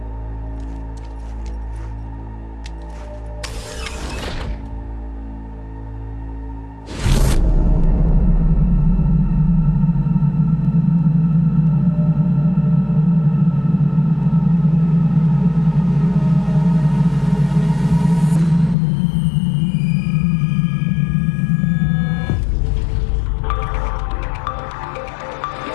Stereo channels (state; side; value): drops out; right; at 18.8 s